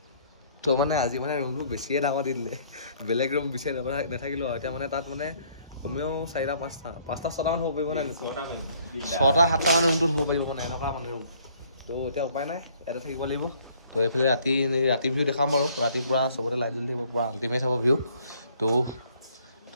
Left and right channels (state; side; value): inverted; both; correlation -0.62